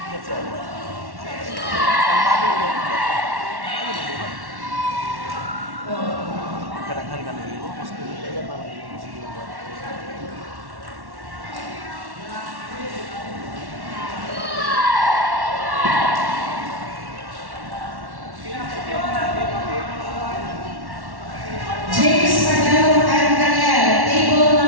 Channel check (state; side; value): late; left; 1.1 ms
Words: Kadang-kadang kan ini, mas kan malah musik ini. James Madelo and Daniel, table